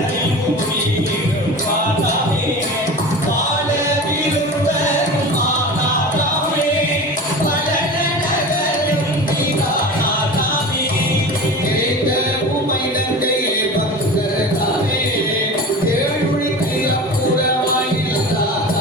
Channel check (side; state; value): both; normal; correlation 0.33